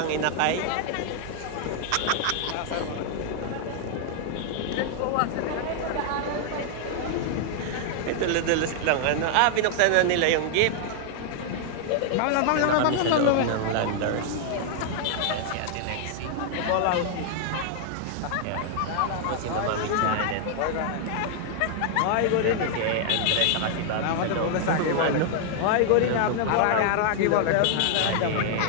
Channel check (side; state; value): both; different; correlation 0.00